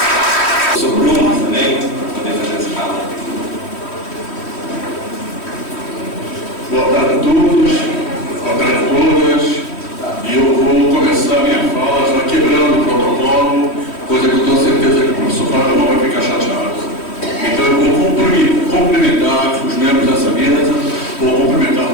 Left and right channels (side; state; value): right; late; 3.1 ms